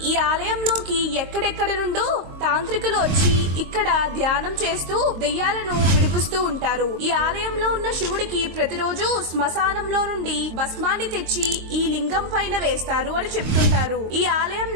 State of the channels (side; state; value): left; late; 23 ms